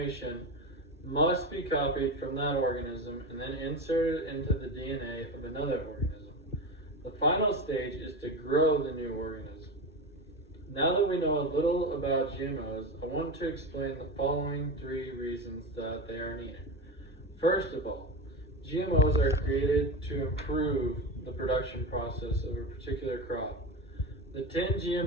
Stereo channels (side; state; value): both; normal; correlation 0.22